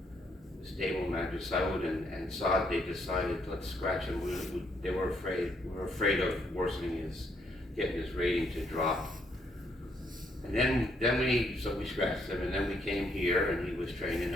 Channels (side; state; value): both; normal; correlation 0.72